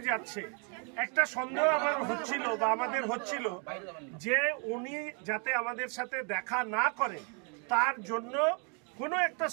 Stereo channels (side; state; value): left; quieter; 37.3 dB